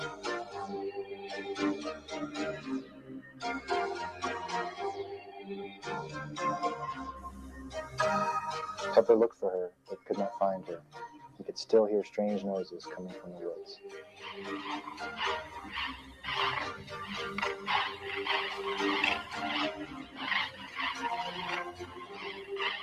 Pepper looked for her, but could not find her. He could still hear strange noises coming from the woods.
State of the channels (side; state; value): both; identical; correlation 1.00